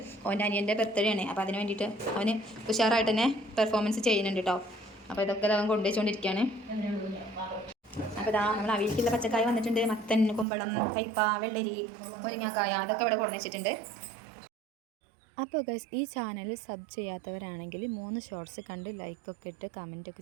അവൻ്റെ അനിയൻ്റെ ബർത്ത്ഡേ ആണ്. അപ്പോൾ അതിന് വേണ്ടിയിട്ട് അവന് ഉഷാറായിട്ട് തന്നെ പെർഫോമൻസ് ചെയ്യുന്നുണ്ട് കേട്ടോ. അപ്പോൾ ഇതൊക്കെ അവൻ കൊണ്ടുവച്ചുകൊണ്ടിരിക്കുകയാണ്. അപ്പോൾ ഇതാ നമ്മൾ അവിയലിക്കുള്ള പച്ചക്കായ വന്നിട്ടുണ്ട്. മത്തൻ, കുമ്പളം, കയ്പ, വെള്ളരി, മുരിങ്ങക്കായ അതൊക്കെ ഇവിടെ കൊണ്ടു വെച്ചിട്ടുണ്ട്. അപ്പോൾ ഗൈസ്, ഈ ചാനൽ സബ് ചെയ്യാത്തവരാണെങ്കിൽ 3 ഷോർട്സ് കണ്ട് ലൈക്കൊക്കെ ഇട്ട്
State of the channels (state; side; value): drops out; left; at 10.5 s